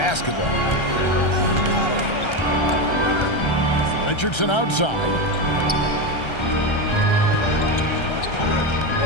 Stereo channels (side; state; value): right; late; 1.3 ms